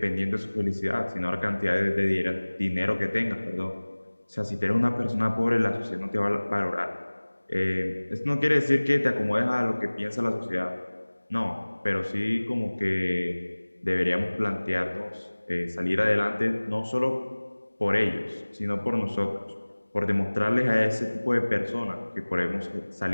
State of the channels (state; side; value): inverted; both; correlation -1.00